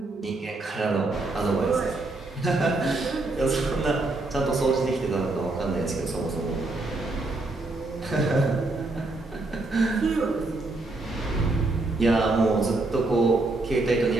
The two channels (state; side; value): quieter; left; 3.1 dB